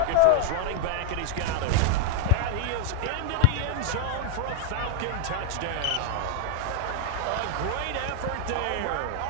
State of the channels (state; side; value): different; both; correlation 0.00